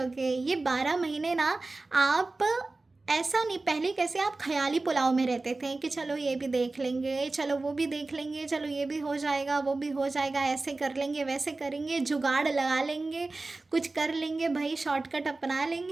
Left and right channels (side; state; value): left; quieter; 3.3 dB